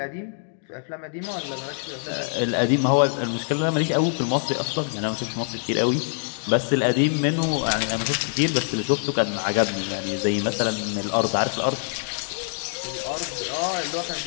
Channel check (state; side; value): silent; right; digital silence